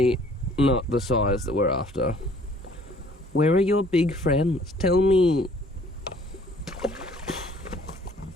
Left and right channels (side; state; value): both; normal; correlation 0.56